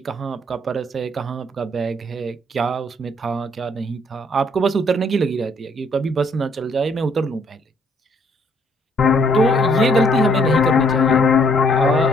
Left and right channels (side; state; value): both; normal; correlation 0.65